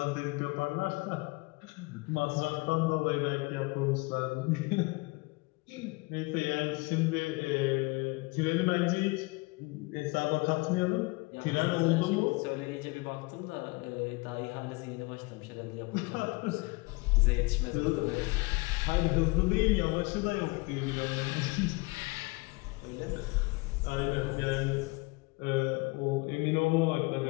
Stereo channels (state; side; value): quieter; right; 25.9 dB